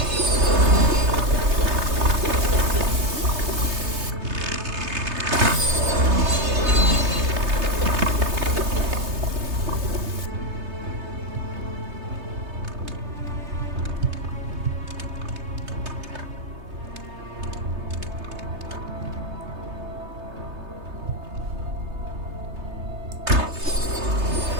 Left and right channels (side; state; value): left; late; 3.3 ms